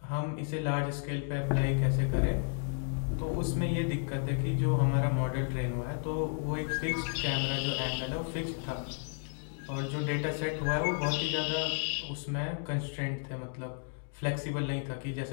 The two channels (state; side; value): silent; right; 56 dB below the other